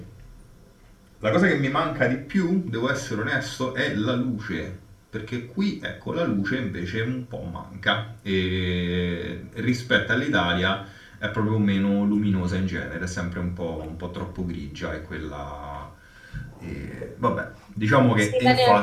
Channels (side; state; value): both; identical; correlation 1.00